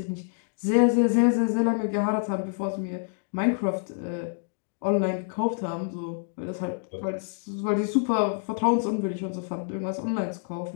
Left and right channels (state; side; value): silent; right; digital silence